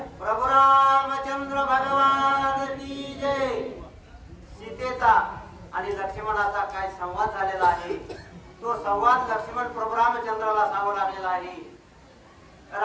प्रभू रामचंद्र भगवान की जय। सीतेचा आणि लक्ष्मणाचा काय संवाद झालेला आहे तो संवाद लक्ष्मण प्रभू रामचंद्राला सांगू लागलेला आहे।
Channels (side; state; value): both; identical; correlation 1.00